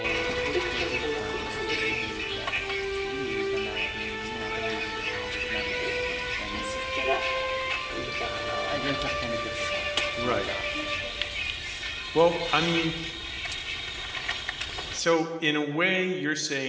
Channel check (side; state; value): both; identical; correlation 1.00